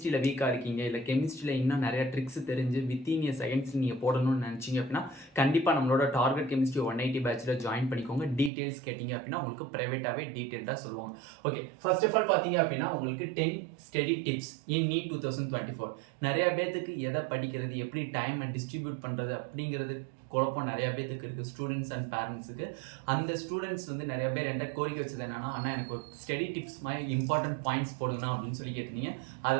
வீக்காக இருக்கீங்க, இல்லை கெமிஸ்ட்ரியில் இன்னும் நிறைய ட்ரிக்ஸ் தெரிஞ்சு வித்தின் இயர் செகண்ட்ஸ் நீங்கள் போடணும்னு நினச்சிங்க அப்படின்னா கண்டிப்பாக நம்மளோட டார்கெட் கெமிஸ்ட்ரி 180 பேட்சில் ஜாயின் பண்ணிக்கோங்க. டீட்டெயில்ஸ் கேட்டிங்க அப்படின்னா உங்களுக்கு ப்ரைவேட்டாகவே டீட்டெயில்டாக சொல்லுவாங்க. ஓகே, ஃபர்ஸ்ட் ஆஃப் ஆல் பார்த்தீங்க அப்படின்னா உங்களுக்கு 10 ஸ்டடி டிப்ஸ் இன் நீட் 2024. நிறையா பேர்த்துக்கு எதை படிக்கிறது, எப்படி டைமை டிஸ்ட்ரிபியூட் பண்ணுறது அப்படிங்கிறது குழப்பம் நிறையா பேர்த்துக்கு இருக்குது, ஸ்டூடெண்ட்ஸ் அண்ட் பேரண்ட்ஸுக்கு. அந்த ஸ்டூடெண்ட்ஸ் வந்து நிறைய பேர் என்கிட்ட கோரிக்கை வச்சது என்னன்னா, அண்ணா எனக்கு ஒரு ஸ்டடி டிப்ஸ் மாதிரி இம்பார்ட்டன்ட் பாயிண்ட்ஸ் போடுங்கண்ணா அப்படின்னு சொல்லி கேட்டிருந்தீங்க. அதை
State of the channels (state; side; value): drops out; left; at 8.5 s